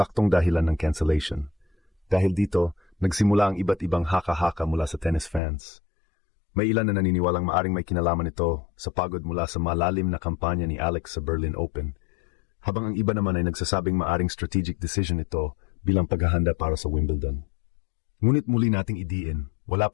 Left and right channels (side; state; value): right; drops out; at 5.4 s